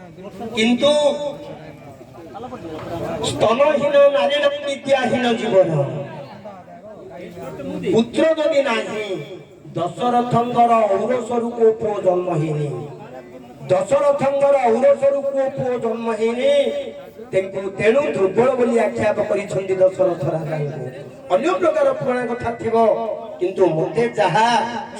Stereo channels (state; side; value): identical; both; correlation 1.00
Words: किंतु स्तनहीन नारी विद्याहीन जीवन पुत्र जदि नाही दशरथंकर औरसरु को पुओ जन्म हेनी दशरथंकर औरसरु को पुओ जन्म हेनी तेणु दुर्बल बोली आख्याप करिछन्ति दशरथ राजा अन्य प्रकार पुराण कथा थिबो किंतु मते जहा